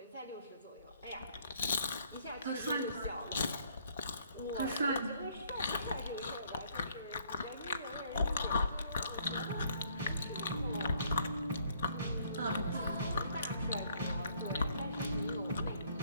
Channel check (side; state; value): both; inverted; correlation -0.64